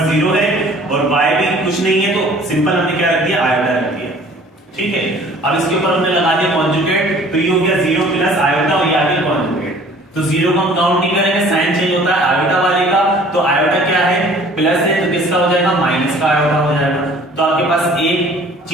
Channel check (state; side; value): normal; both; correlation 0.51